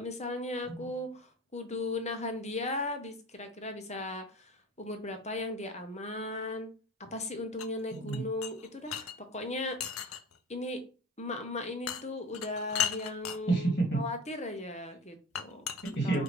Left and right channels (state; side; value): normal; both; correlation 0.35